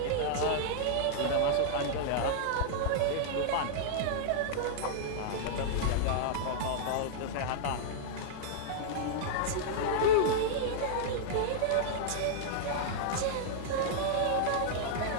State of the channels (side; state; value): both; different; correlation -0.01